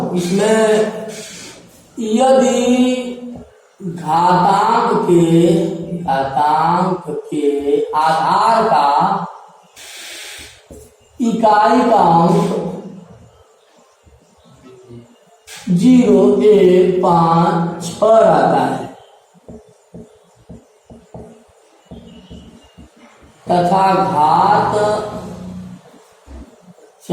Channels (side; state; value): both; identical; correlation 1.00